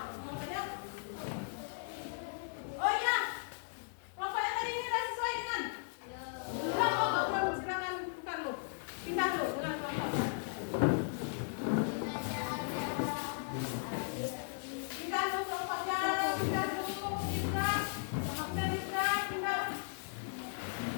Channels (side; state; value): right; silent; digital silence